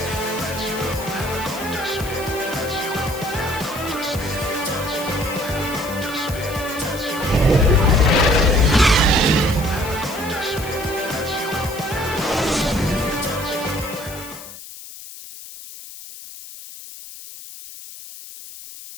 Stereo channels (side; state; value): left; noise; hiss, 14 dB below the sound